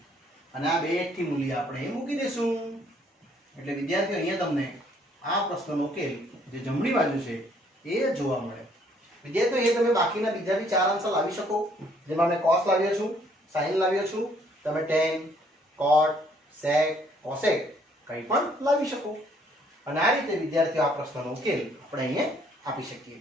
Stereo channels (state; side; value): normal; both; correlation 0.64